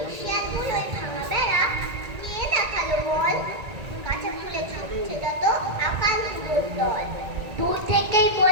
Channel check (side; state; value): left; late; 1.8 ms